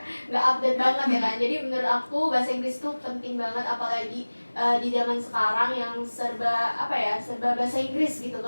nggak update banget ya kan. Jadi menurut aku bahasa Inggris tuh penting banget, apalagi di zaman sekarang yang serba bahasa Inggris gitu.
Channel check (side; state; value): both; inverted; correlation -1.00